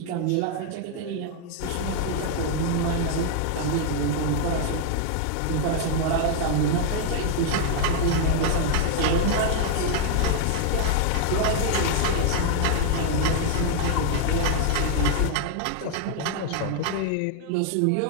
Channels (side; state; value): both; different; correlation 0.00